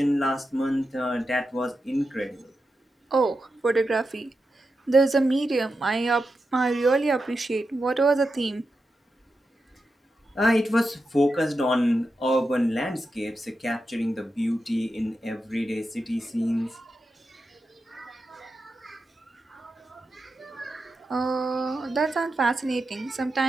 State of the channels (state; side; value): normal; both; correlation 0.89